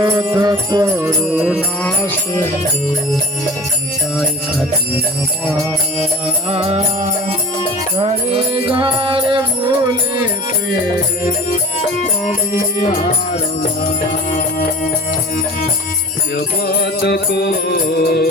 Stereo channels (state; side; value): normal; both; correlation 0.41